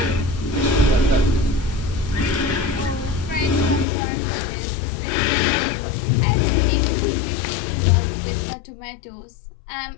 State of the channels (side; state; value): right; drops out; at 3.9 s